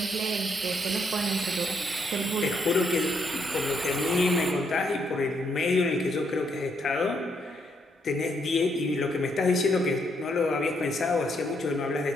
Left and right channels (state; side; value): normal; both; correlation 0.75